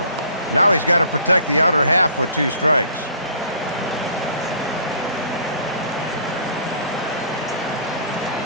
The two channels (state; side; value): inverted; both; correlation -0.51